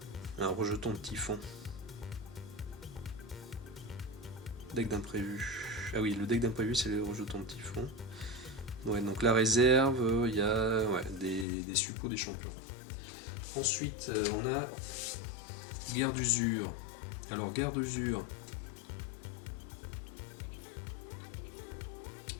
un rejeton de typhon. Deck d'imprévu. Ah oui, le deck d'imprévu c'est le rejeton de typhon. Ouais, donc la réserve, il y a des suppôts des champions. Ensuite, on a guerre d'usure. Alors guerre d'usure.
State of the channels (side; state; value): right; drops out; at 11.5 s